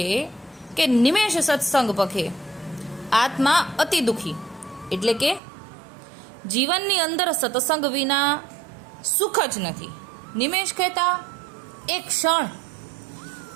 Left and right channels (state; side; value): drops out; left; at 5.4 s